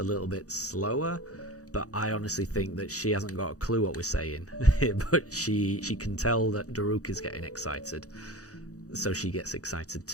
little bit slower. But I honestly think that she hasn't got a clue what we're saying. But she can tell that Daruk is getting excited. So she gets excited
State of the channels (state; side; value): late; right; 0.66 ms